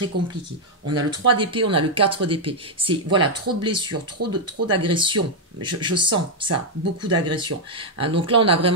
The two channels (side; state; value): both; normal; correlation -0.01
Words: compliqué. On a le 3 d'épée, on a le 4 d'épée. C'est voilà, trop de blessures, trop d'agressions. Je sens ça, beaucoup d'agressions. Hein, donc là, on a